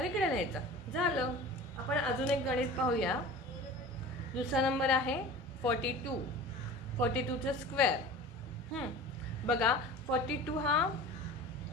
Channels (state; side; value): normal; both; correlation 0.38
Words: इकडे लिहायचा, झालं। आपण अजून एक गणित पाहूया। दुसरा नंबर आहे 42। 42 चा स्क्वेअर बघा, 42 हा